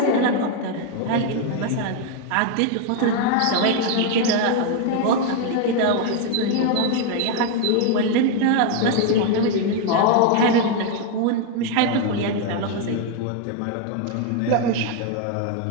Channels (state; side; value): different; both; correlation 0.01